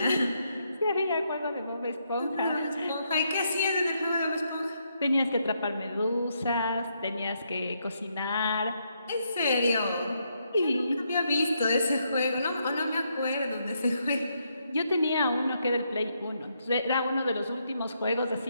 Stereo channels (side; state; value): both; inverted; correlation -0.77